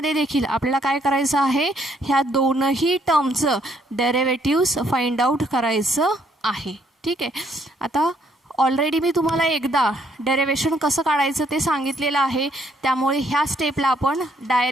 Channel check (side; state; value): both; normal; correlation 0.69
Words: देखील आपल्याला काय करायचं आहे, ह्या दोनही टर्मचं डेरिव्हेटिव्स फाइंड आउट करायचं आहे. ठीक आहे, आता ऑलरेडी मी तुम्हाला एकदा डेरिव्हेशन कसं काढायचं ते सांगितलेलं आहे, त्यामुळे ह्या स्टेपला आपण